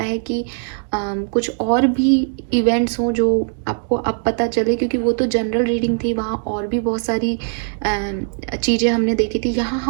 है कि कुछ और भी इवेंट्स हों जो आपको अब पता चले, क्योंकि वो तो जनरल रीडिंग थी, वहाँ और भी बहुत सारी चीज़ें हमने देखी थी। यहाँ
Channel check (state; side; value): silent; left; 65 dB below the other